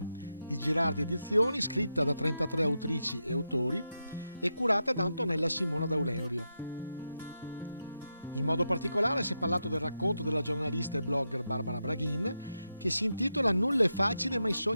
di Girardi Edizioni, scritta da 33 autrici e autori e curata da Antonella Simona D'Auleurio. In modo particolare si è parlato del racconto della giornalista e blogger Barbara Braghin, che si intitola Nulla è facile ma i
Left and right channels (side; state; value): both; inverted; correlation -0.87